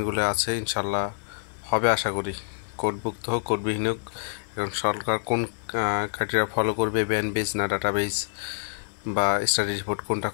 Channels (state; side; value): silent; right; digital silence